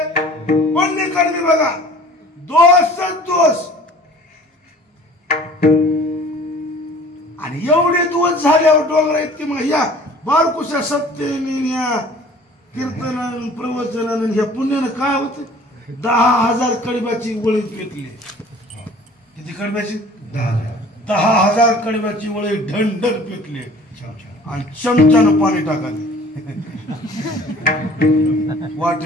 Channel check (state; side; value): normal; both; correlation 0.49